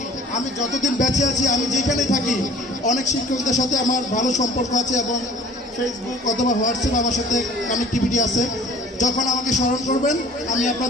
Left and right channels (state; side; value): normal; both; correlation 0.48